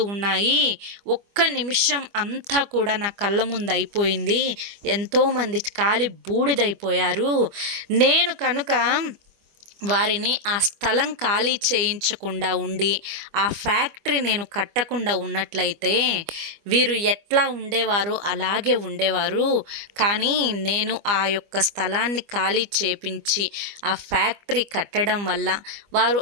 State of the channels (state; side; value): late; left; 25 ms